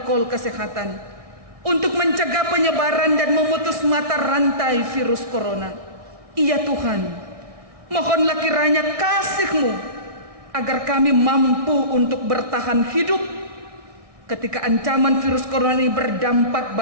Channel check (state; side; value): late; left; 1.6 ms